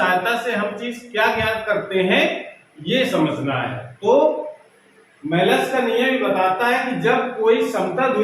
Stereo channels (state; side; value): identical; both; correlation 1.00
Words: से हम चीज क्या ज्ञात करते हैं, ये समझना है। तो मेलस का नियम बताता है कि जब कोई समतल